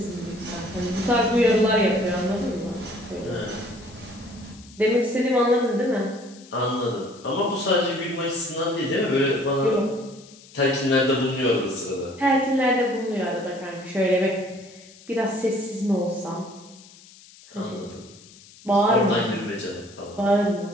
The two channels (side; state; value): left; noise; hiss, 23 dB below the sound